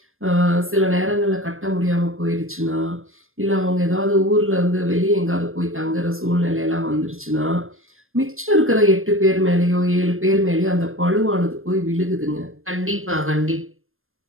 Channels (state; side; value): late; left; 0.60 ms